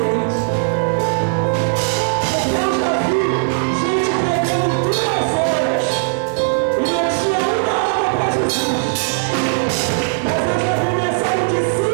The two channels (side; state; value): left; silent; 61 dB below the other